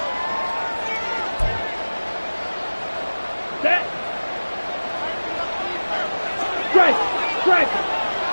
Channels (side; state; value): both; inverted; correlation -1.00